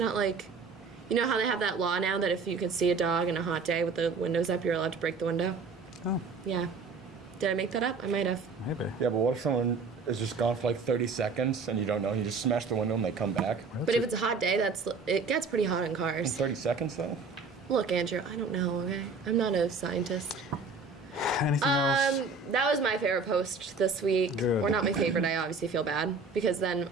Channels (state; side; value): quieter; left; 4.4 dB